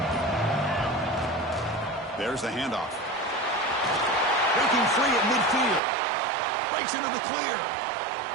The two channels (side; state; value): left; drops out; at 5.8 s